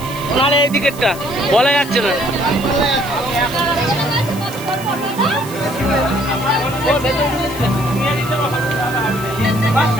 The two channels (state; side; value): noise; right; hiss, 16 dB below the sound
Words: নাহলে এইদিকেরটা বলা যাচ্ছে না।